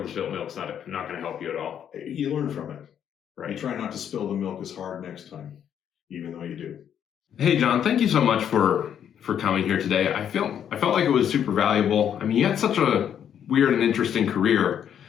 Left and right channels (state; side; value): quieter; right; 9.1 dB